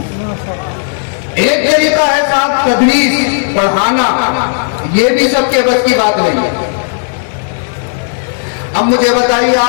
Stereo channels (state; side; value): silent; right; digital silence